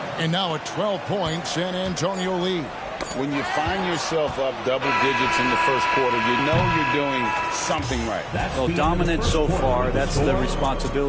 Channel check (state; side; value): identical; both; correlation 1.00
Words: And now a 12-point San Antonio lead. When you find yourself up double digits in the first quarter, you know you're doing something right. Well, dominant so far. That's the